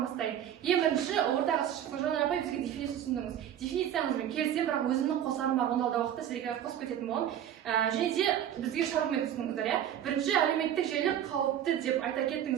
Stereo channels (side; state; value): left; quieter; 10.4 dB